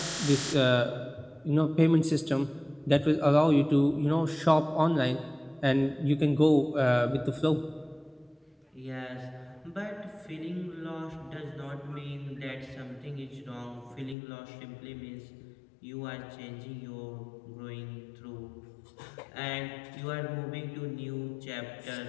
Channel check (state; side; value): drops out; right; at 14.2 s